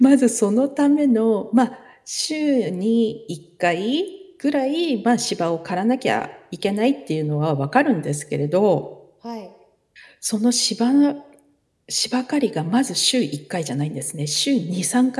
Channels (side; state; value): both; identical; correlation 1.00